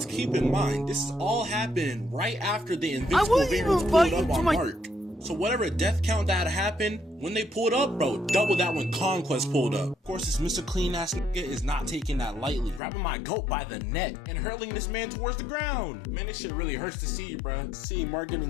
keep in mind, this is all happening right after the Invincible variants pulled up on Mark. So whatever death count that happened, when they pulled up, bro, double that when Conquest pulled up. Of course, this Mr. Clean ass nigga is not taking that lightly, grabbing my goat by the neck and hurling this man towards the ground. Man, this shit really hurts to see, bro. Seeing Mark getting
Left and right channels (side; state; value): right; drops out; at 12.8 s